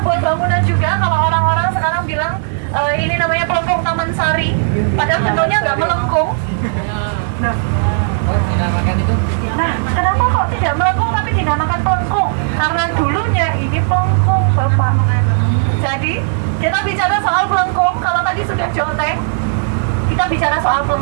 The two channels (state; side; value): silent; left; digital silence